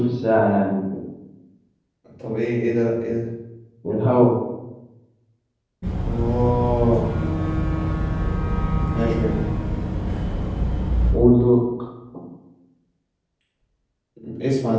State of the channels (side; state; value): both; identical; correlation 1.00